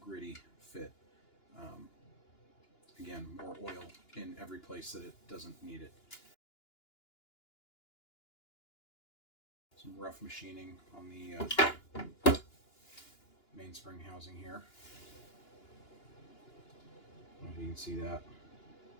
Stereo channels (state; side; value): late; right; 2.9 ms